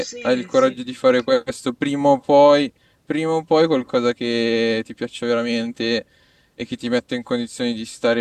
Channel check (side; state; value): both; identical; correlation 1.00